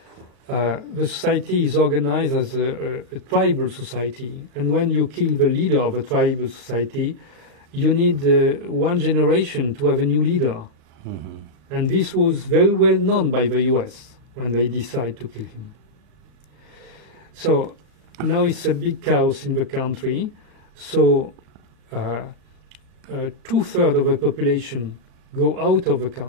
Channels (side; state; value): left; late; 37 ms